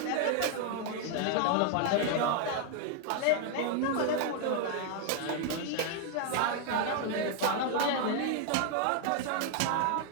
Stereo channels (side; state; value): both; different; correlation 0.01